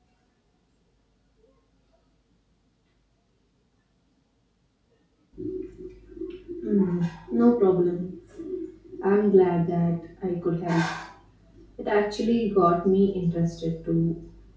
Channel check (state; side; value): identical; both; correlation 1.00